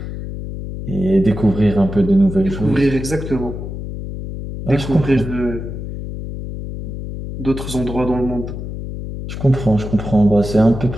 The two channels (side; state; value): left; noise; hum, 8 dB below the sound